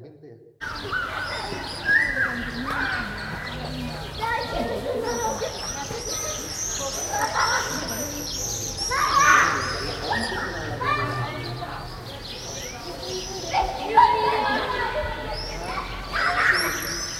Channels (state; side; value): identical; both; correlation 1.00